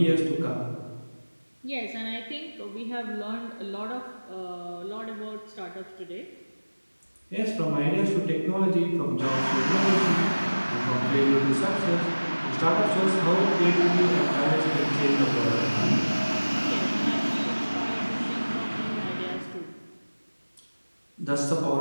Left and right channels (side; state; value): both; inverted; correlation -1.00